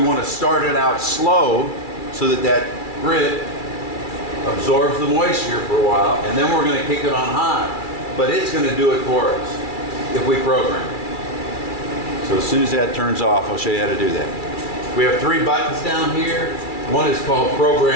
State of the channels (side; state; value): right; late; 2.3 ms